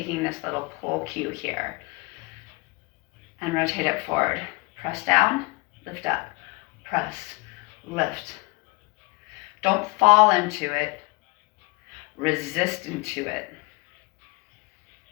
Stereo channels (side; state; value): right; quieter; 27.6 dB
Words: this little pull cue here. And rotate it forward. Press down, lift up. Press, lift. Don't fall into it. Resist into it.